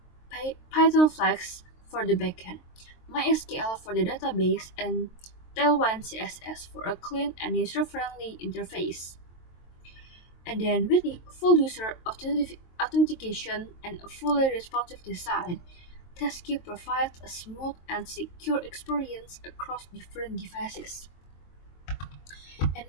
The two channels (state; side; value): late; right; 23 ms